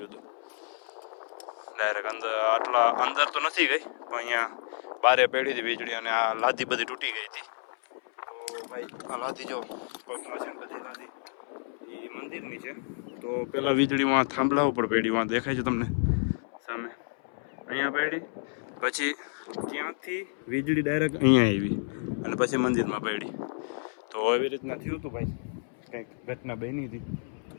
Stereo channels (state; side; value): silent; right; 58 dB below the other